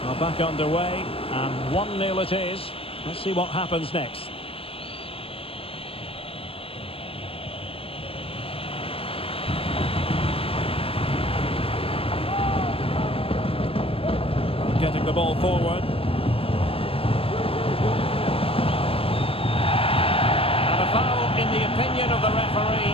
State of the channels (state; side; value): late; right; 0.27 ms